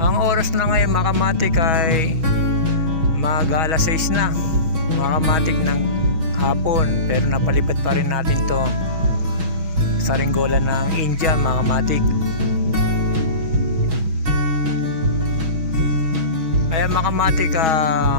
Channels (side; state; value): left; late; 6.2 ms